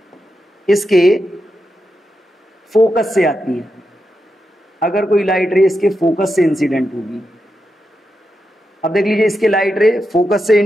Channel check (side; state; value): both; normal; correlation 0.87